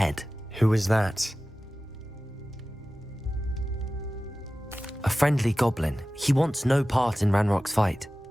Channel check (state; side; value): normal; both; correlation 0.96